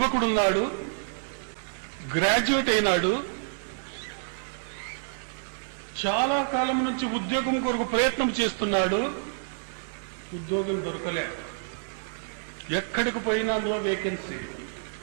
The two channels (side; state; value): left; silent; digital silence